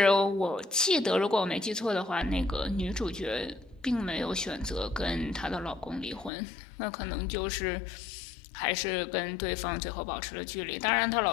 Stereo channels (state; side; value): drops out; right; at 6.3 s